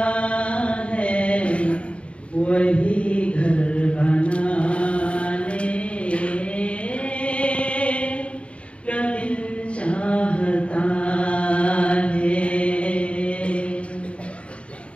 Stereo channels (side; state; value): right; late; 0.061 ms